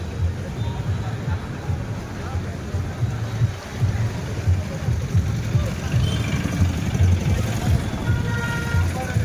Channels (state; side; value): identical; both; correlation 1.00